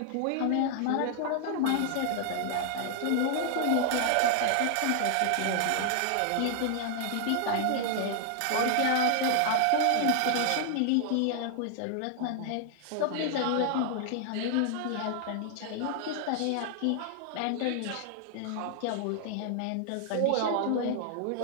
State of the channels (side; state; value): both; different; correlation 0.00